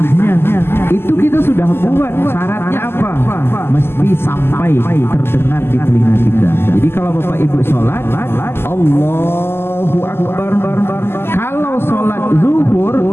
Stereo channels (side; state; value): right; late; 0.12 ms